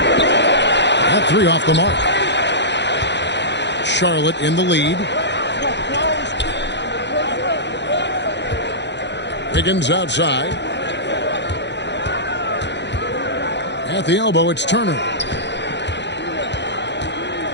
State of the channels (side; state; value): right; late; 0.51 ms